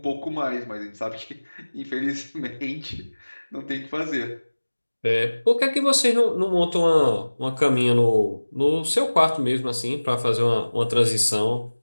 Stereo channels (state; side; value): inverted; both; correlation -1.00